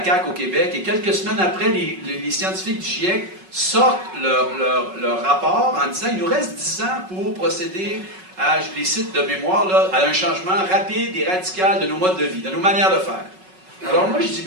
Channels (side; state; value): left; late; 5.4 ms